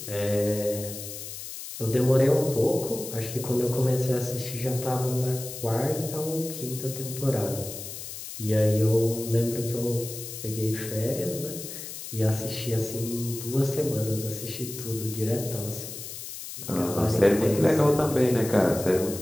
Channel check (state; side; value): noise; left; hiss, 10 dB below the sound